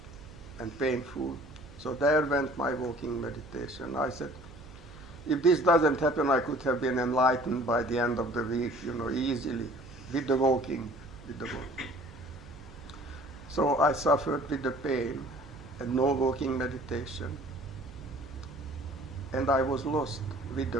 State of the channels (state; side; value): noise; right; hum, 19 dB below the sound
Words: and painful. So there went my walking meditation. I said, if this doesn't happen, I could have been enlightened by the end of the week, easily, with the walking. So I suffered with the pain and no walking meditation. And I was lost with the